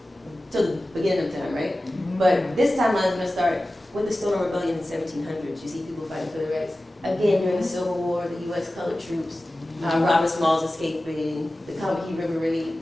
to the beginning of time, right? But this timeline is going to start with the Stoner Rebellion in the 1700s. You see people fighting for their rights. Again, during the Civil War, the U.S. colored troops, Robert Smalls escaping, the Combahee River Raid.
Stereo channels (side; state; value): both; normal; correlation 0.96